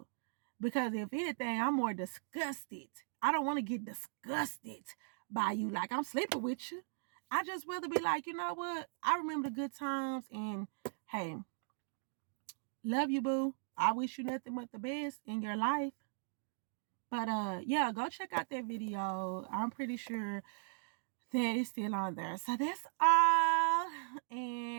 Because if anything, I'm more disgusted. I don't want to get disgusted by you like I'm sleeping with you. I just rather be like, you know what? I remember the good times and hey, love you, boo. I wish you nothing but the best in your life. But yeah, go check out that video. I'm pretty sure that it's still on there. So that's all.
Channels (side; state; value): left; silent; digital silence